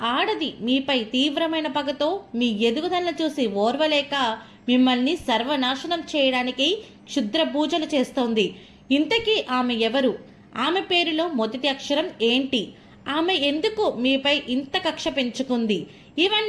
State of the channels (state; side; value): identical; both; correlation 1.00